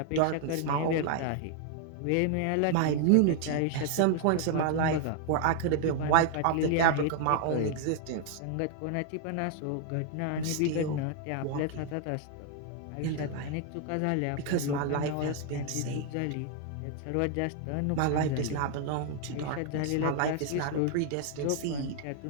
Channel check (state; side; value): different; both; correlation 0.00